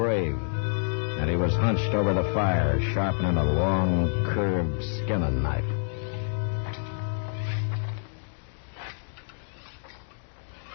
and he was hunched over the fire, sharpening a long, curved skinning knife.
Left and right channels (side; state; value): right; silent; 60 dB below the other